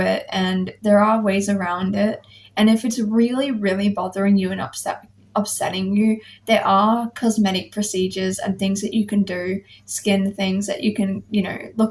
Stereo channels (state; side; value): identical; both; correlation 1.00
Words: and there are ways around it. And if it's really, really bothering you and upsetting you, there are cosmetic procedures and things that you can do, skin things that you can,